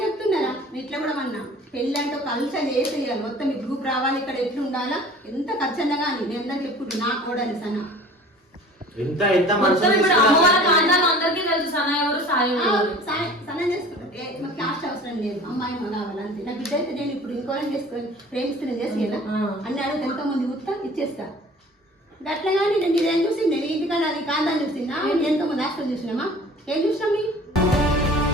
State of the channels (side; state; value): both; normal; correlation 0.45